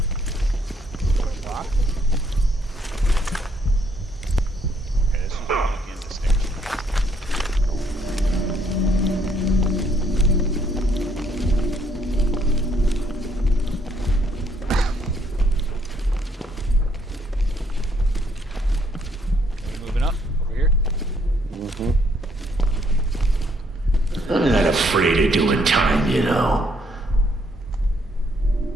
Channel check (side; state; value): both; normal; correlation 0.69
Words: I'm not afraid of doing time, you know.